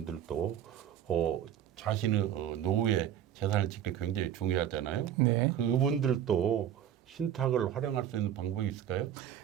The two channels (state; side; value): quieter; left; 10.2 dB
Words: 자신의 노후에 재산을 지키기 굉장히 중요하잖아요. 네. 그분들도 신탁을 활용할 수 있는 방법이 있을까요?